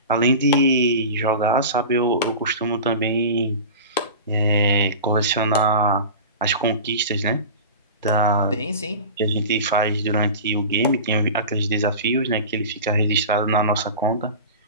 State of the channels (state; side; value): inverted; both; correlation -0.33